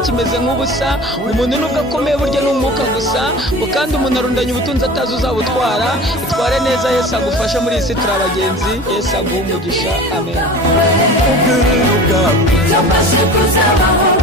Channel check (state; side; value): normal; both; correlation 0.38